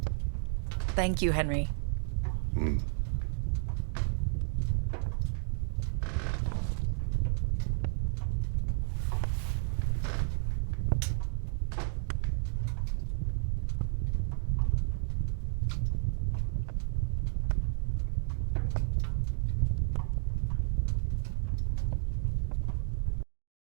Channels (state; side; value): silent; left; 57 dB below the other